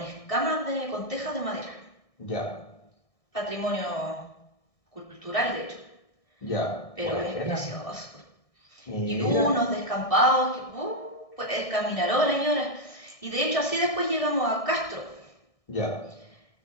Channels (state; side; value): late; right; 1.6 ms